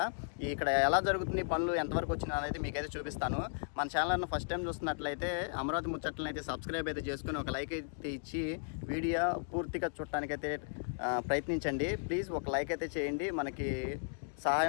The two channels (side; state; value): right; silent; digital silence